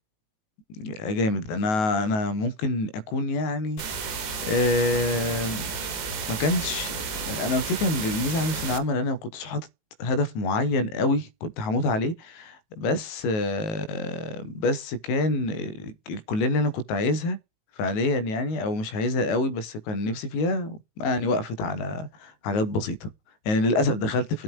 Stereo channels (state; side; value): late; right; 18 ms